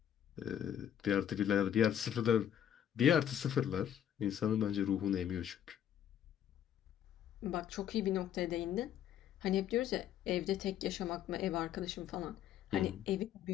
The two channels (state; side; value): quieter; right; 10.1 dB